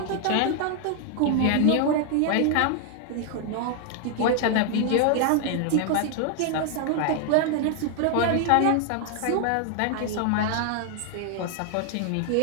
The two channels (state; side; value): different; both; correlation 0.00